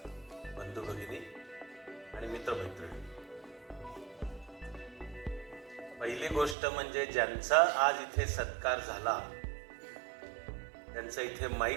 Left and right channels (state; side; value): drops out; left; at 6.6 s